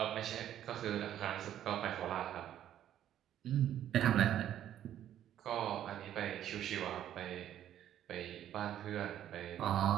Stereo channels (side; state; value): left; quieter; 11.2 dB